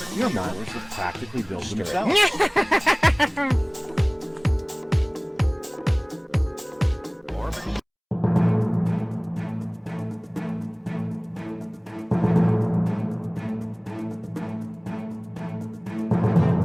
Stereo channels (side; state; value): both; identical; correlation 1.00